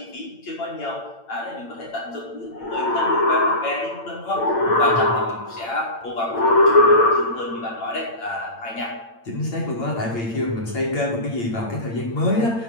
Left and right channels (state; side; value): late; right; 8.8 ms